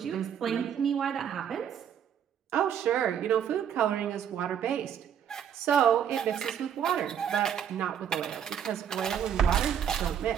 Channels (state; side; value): quieter; left; 8.8 dB